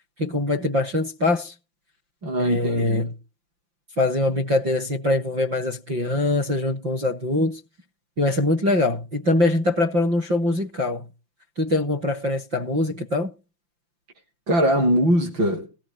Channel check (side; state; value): left; late; 5.8 ms